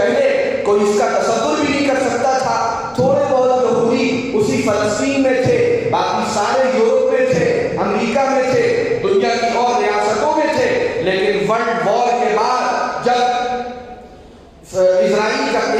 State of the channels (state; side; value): identical; both; correlation 1.00